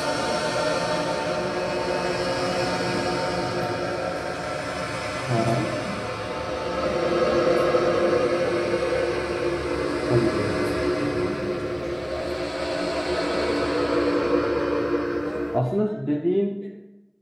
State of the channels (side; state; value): both; identical; correlation 1.00